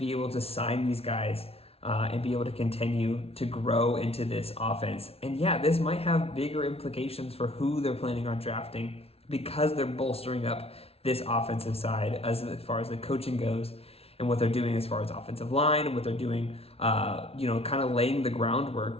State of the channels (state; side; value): late; right; 0.29 ms